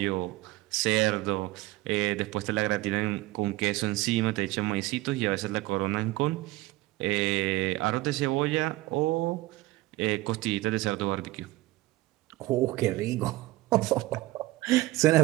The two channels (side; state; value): left; quieter; 18.8 dB